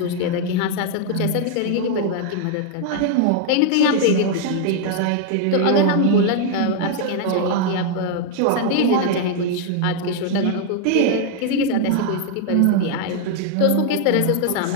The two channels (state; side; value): different; both; correlation 0.00